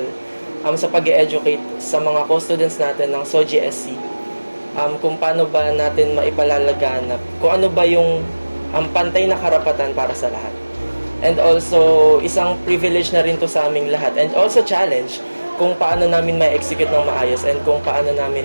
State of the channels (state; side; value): inverted; both; correlation -1.00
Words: sa pag-educate sa mga co-students natin ng SOGSC, kung paano ba natin maipalalaganap, kung ano ba yung pantay na karapatan para sa lahat. And also, isang privilege na rin to sa aming lahat. And also challenge kung paano namin ma-execute ng maayos and kung paano namin